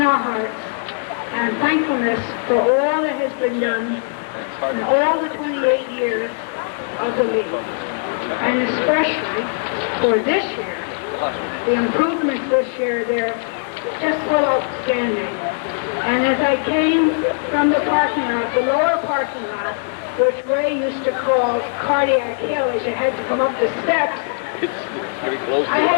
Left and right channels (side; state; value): right; silent; digital silence